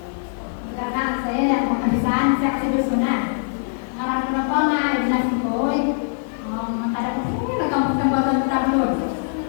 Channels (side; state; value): right; silent; 64 dB below the other